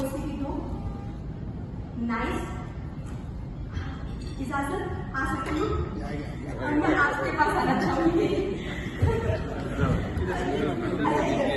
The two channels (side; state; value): both; identical; correlation 1.00